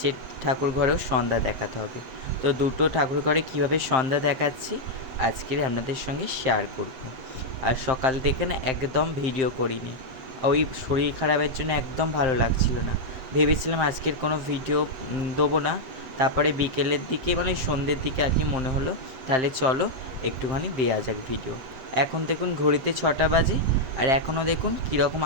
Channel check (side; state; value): left; late; 7.7 ms